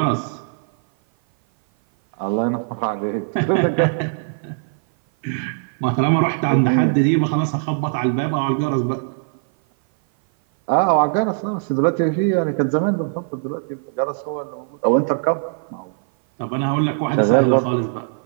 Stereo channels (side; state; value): left; silent; 56 dB below the other